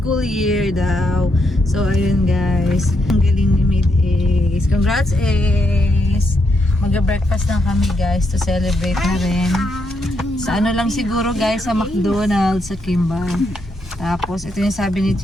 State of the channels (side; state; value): both; normal; correlation 0.79